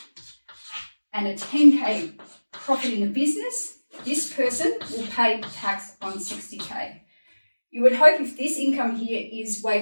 and a 10K profit in the business, this person will pay tax on 60K. You would hope if this income here is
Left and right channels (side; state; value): both; inverted; correlation -1.00